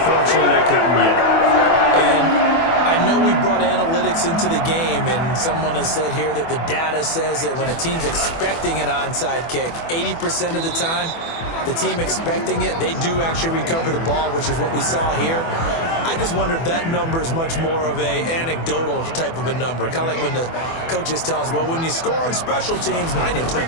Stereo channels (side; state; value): right; late; 24 ms